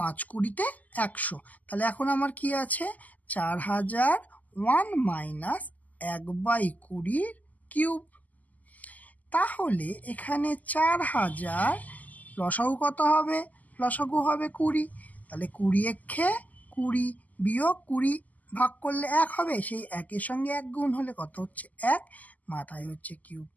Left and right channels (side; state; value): right; late; 0.079 ms